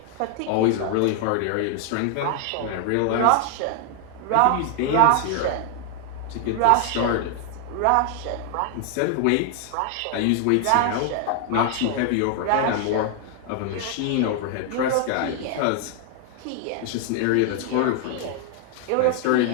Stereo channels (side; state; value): both; different; correlation 0.00